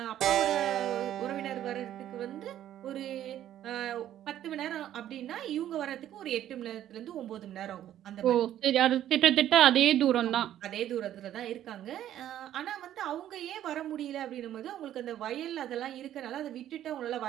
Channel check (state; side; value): quieter; left; 11.8 dB